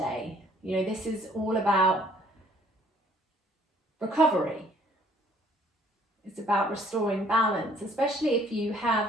You know, this is all about recovery. It's about restoring balance, especially if you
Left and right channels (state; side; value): normal; both; correlation 0.60